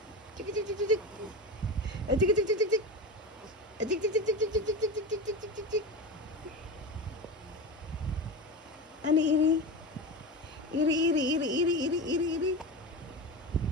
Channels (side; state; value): both; normal; correlation 0.23